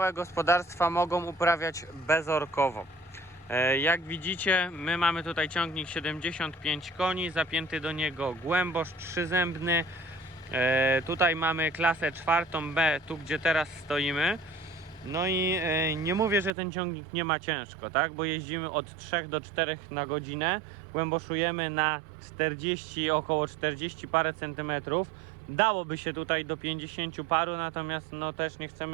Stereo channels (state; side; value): drops out; left; at 16.5 s